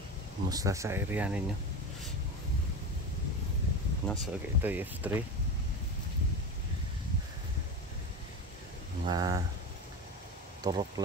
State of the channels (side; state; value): both; normal; correlation 0.24